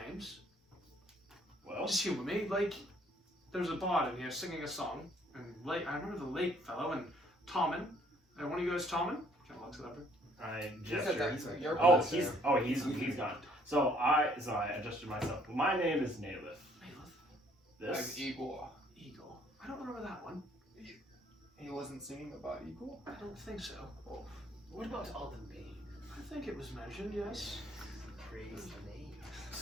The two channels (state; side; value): normal; both; correlation 0.63